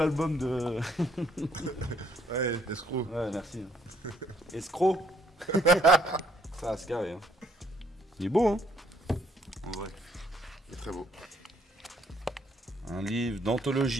de. Ouais, escroc. Ouais, merci. Escroc. Ça, c'est carré. Hein. Il est beau, hein? En vrai. Il est très beau. Un livre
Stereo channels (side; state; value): both; normal; correlation 0.66